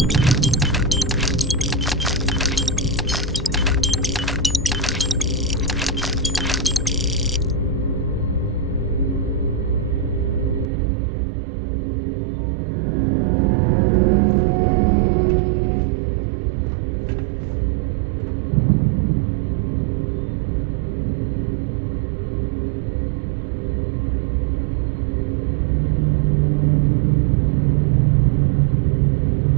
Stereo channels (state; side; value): drops out; left; at 10.7 s